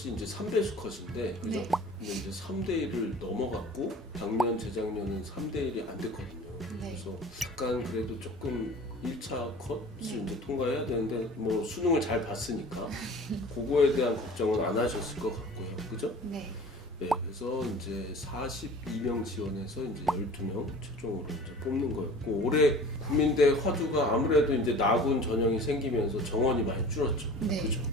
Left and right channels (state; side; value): normal; both; correlation 0.42